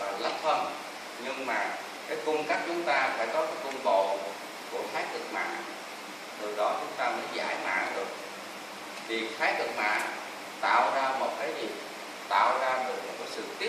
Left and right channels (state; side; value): identical; both; correlation 1.00